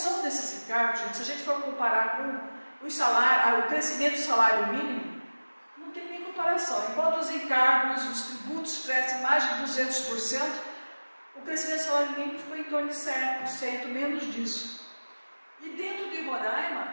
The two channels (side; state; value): both; inverted; correlation -1.00